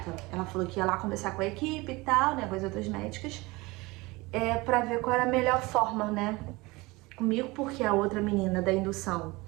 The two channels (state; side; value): quieter; left; 22.9 dB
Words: Ela falou que ia lá conversar com a equipe e tal, né, com as outras médicas, pra ver qual era a melhor forma, né, comigo, porque a outra menina da indução